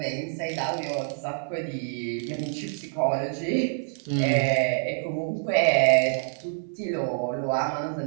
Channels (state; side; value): silent; left; 60 dB below the other